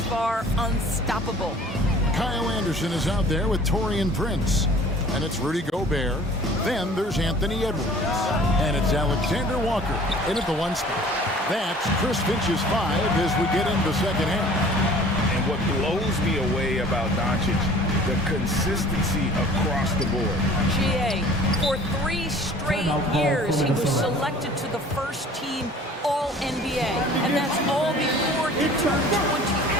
far, unstoppable. Kyle Anderson is out there with Taurean Prince. And it's Rudy Gobert. Then there's Anthony Edwards. And it's Alexander Walker in at the 1 spot. That's Chris Finch's 5 as we get into the second half. And what blows me away about Doncic, the consistency across the board. GA, for 3 straight years, he was selected to the first team All-NBA. And that's all before he turned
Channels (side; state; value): both; normal; correlation 0.48